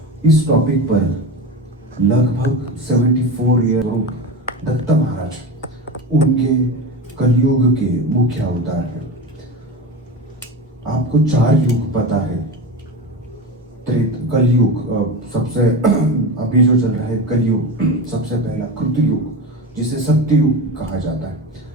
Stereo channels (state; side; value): normal; both; correlation 0.25